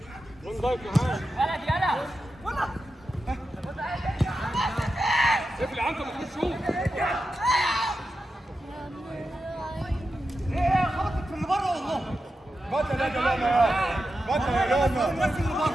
وين ضايق معاه يلا اقفل يا عنتر ما تخش شوف خبطت في اللي بره والله بطل يا جماعه بطل يا جماعه الناس اللي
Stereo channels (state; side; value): normal; both; correlation 0.90